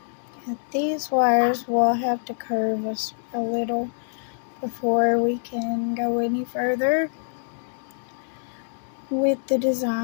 And these wires will have to curve us a little before we can go any further with the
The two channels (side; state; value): right; silent; digital silence